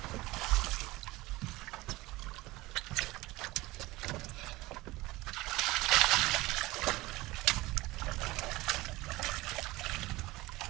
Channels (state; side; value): quieter; left; 20.0 dB